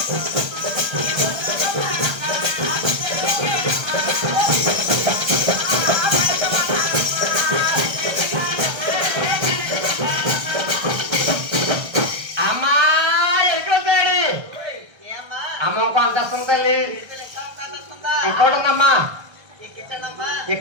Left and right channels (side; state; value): left; late; 1.5 ms